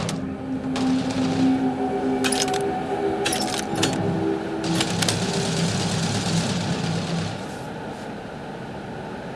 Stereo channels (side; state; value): both; identical; correlation 1.00